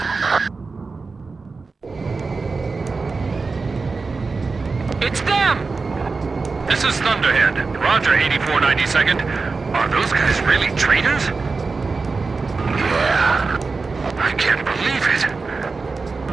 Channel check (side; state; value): left; quieter; 4.2 dB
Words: It's them! This is Thunderhead. Roger, 8492nd. Are those guys really traitors? Yeah. I can't believe it.